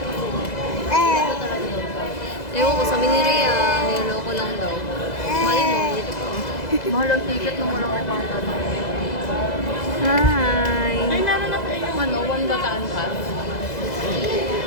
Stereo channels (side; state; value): right; late; 2.0 ms